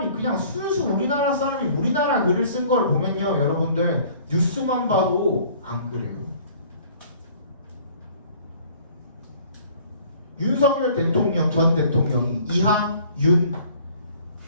그냥 순수 우리나라 사람이 우리나라 글을 쓴 걸 보면요, 여러분들 뉴스만 봐도 안 그래요. 윤석열 대통령 전 대통령이 이하 윤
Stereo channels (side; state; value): both; inverted; correlation -0.53